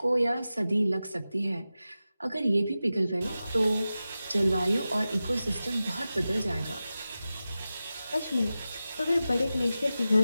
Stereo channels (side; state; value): both; inverted; correlation -0.94